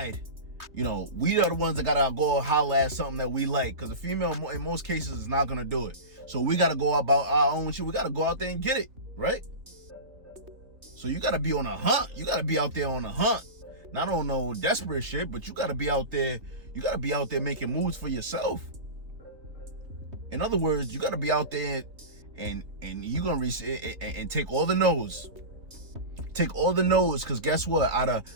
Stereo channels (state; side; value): late; left; 3.0 ms